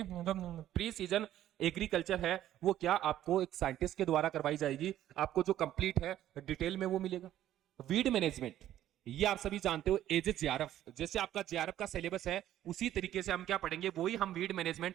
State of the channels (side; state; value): left; quieter; 12.5 dB